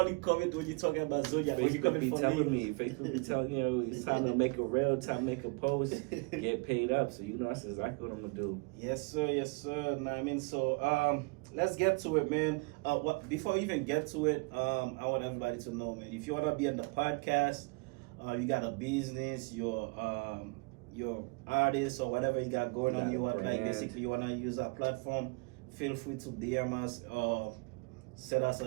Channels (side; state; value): left; quieter; 30.4 dB